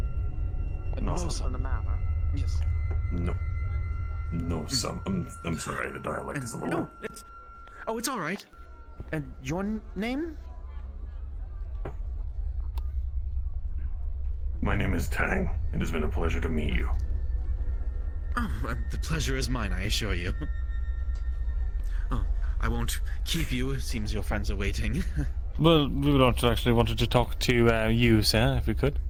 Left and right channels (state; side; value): identical; both; correlation 1.00